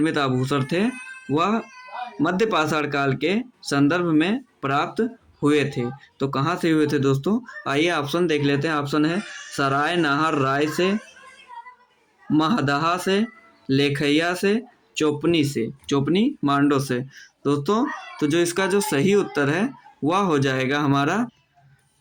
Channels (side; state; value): both; identical; correlation 1.00